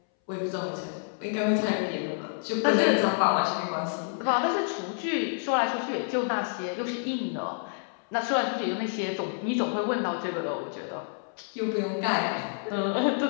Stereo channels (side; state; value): right; silent; 59 dB below the other